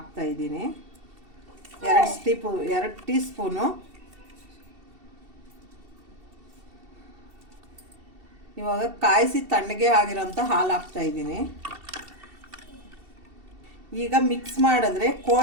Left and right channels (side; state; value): left; late; 2.7 ms